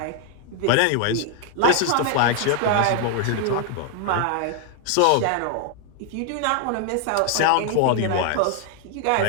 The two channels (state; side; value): different; both; correlation 0.00